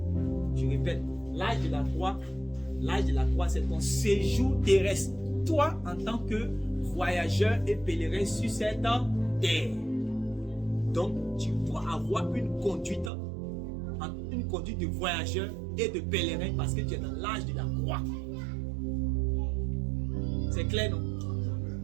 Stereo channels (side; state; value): left; drops out; at 13.1 s